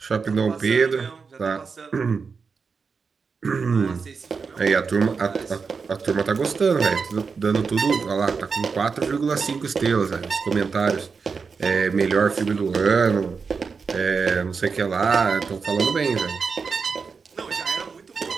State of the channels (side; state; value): left; quieter; 5.2 dB